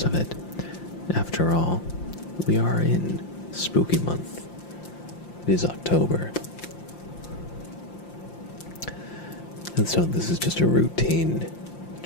of it. After all, we are in spooky month. It is October. And so this is just a routine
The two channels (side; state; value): right; late; 5.8 ms